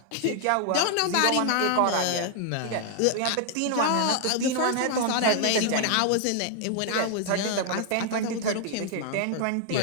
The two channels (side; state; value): both; different; correlation 0.00